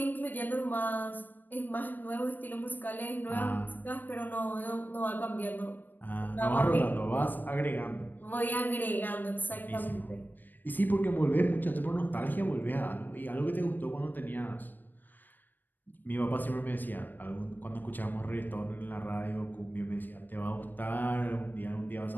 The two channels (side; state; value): right; late; 0.090 ms